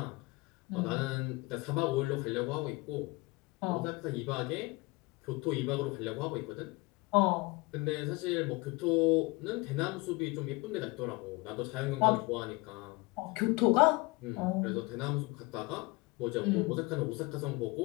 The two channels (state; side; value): quieter; right; 24.5 dB